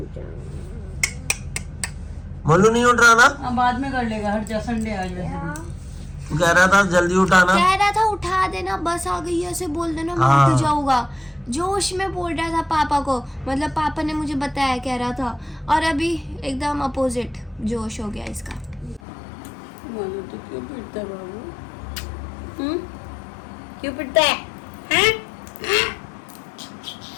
मोलू नहीं उठ रहा ना? अब बाद में कर लेगा, हट जा, संडे आज वैसे भी। तू कह रहा था जल्दी उठाना। कह रहा था उठा देना, बस आ गई है, ऐसे बोल देना, मैं हाँ। उठ जाऊंगा। जोश में बोल रहा था पापा को, मतलब पापा ने मुझे बताया, कह रहा था। और अभी एकदम अपोजिट जोश हो गया इसका। बोलो तो क्यों पिटता है बाबू? क्यों पिटता है? हैं?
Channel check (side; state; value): right; drops out; at 19.0 s